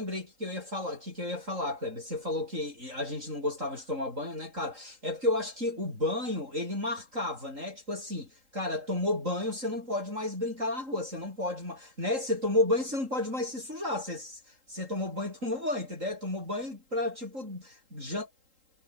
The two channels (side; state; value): left; late; 3.8 ms